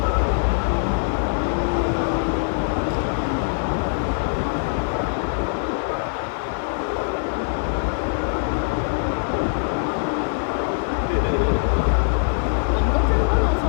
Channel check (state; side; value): silent; right; digital silence